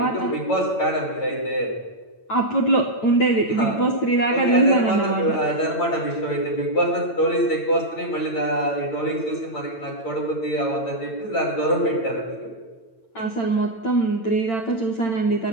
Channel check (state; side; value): late; right; 8.9 ms